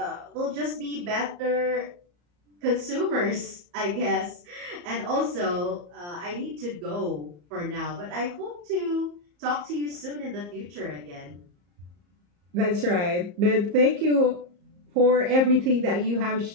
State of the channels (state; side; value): late; left; 34 ms